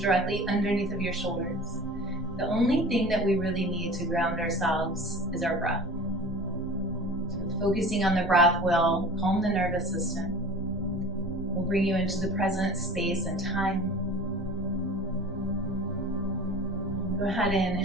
underneath of your shoulders. The only thing that we really need to ground ourselves is our breath. Focusing on the breath will calm the nervous system, will bring you into the present space and time. Go ahead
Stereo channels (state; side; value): normal; both; correlation 0.39